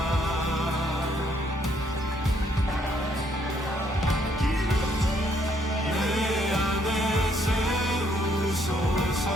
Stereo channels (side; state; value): both; normal; correlation 0.70